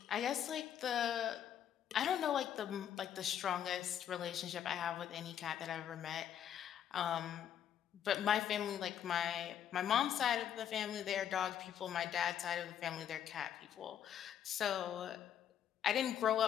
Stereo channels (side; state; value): right; quieter; 9.6 dB